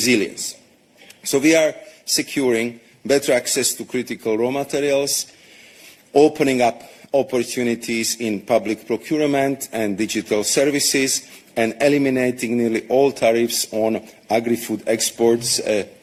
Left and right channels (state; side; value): identical; both; correlation 1.00